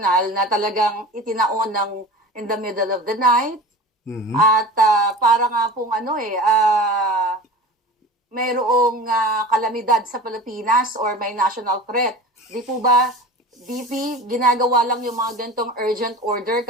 na talagang itinaon ng in the middle of the night. At para nga pong mayroong kalamidad sa Pilipinas or may national threat. Di po ba, DP, ginagawa lang yung mga ganitong urgent order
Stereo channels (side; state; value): both; normal; correlation 0.35